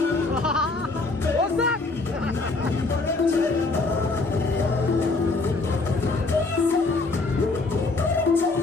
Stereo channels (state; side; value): quieter; right; 3.5 dB